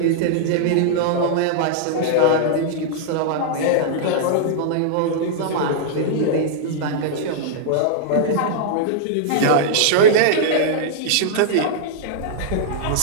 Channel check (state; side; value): different; both; correlation -0.01